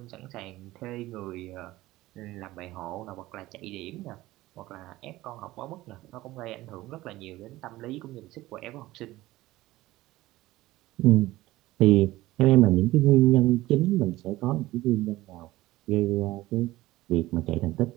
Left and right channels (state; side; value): quieter; left; 17.5 dB